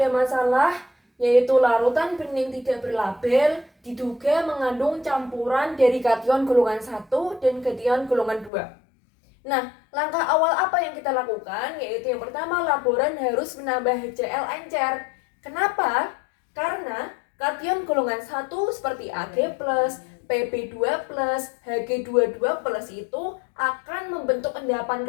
masalah yaitu larutan bening tidak berlabel diduga mengandung campuran dari kation golongan 1 dan kation golongan 2. Nah, langkah awal apa yang kita lakukan? Yaitu yang pertama, laboran harus menambah HCl encer. Kenapa? Karena kation golongan 1 seperti Ag+, Pb2+, Hg22+ itu akan membentuk endapan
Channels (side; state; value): right; drops out; at 8.5 s